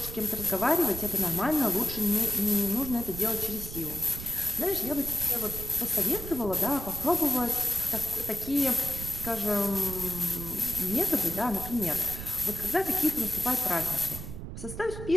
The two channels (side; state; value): right; noise; rumble, 9 dB below the sound